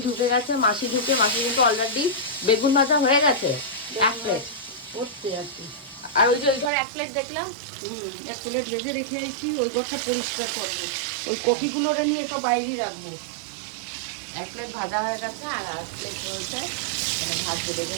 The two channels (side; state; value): left; drops out; at 6.7 s